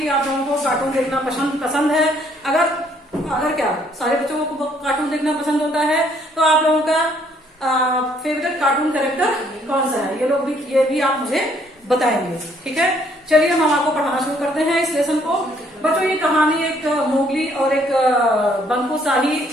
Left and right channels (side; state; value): both; normal; correlation 0.66